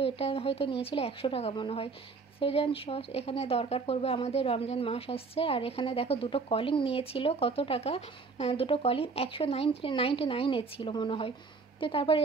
এটা হয়তো নিয়েছিল 100 টাকা মনে হয়। সেজান সস এখানে দরকার পড়বে আমাদের, রমজান মাস আসছে। আর এখানে দেখো 2টো কলিং নিয়েছিল, কত টাকা, 2টো কলিং 199 ছিল মনে হয়। তো তারপর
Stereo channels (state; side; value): quieter; left; 4.5 dB